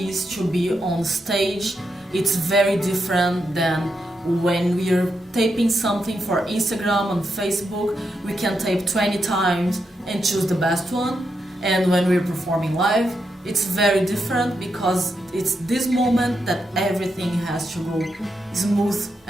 to be on stage. It's very different than when we are taping something for Instagram and Facebook. We can tape 20 times and choose the best one. And when we're performing live, it's very different because it's this moment that everything has to go smooth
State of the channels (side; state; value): both; normal; correlation 0.84